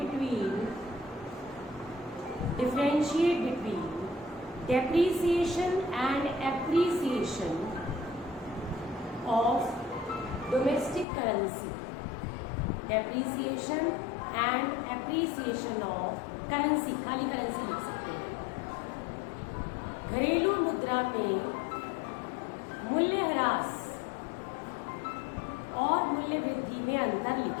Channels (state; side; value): drops out; right; at 11.1 s